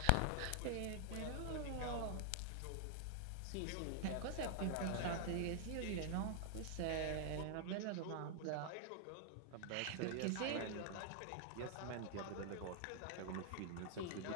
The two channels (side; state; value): both; different; correlation 0.00